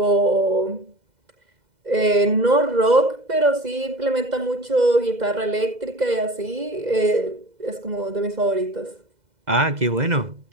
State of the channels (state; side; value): late; left; 2.0 ms